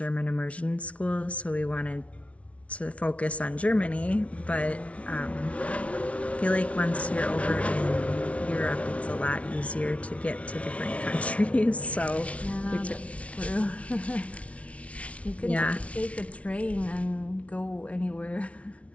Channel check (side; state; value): right; late; 0.064 ms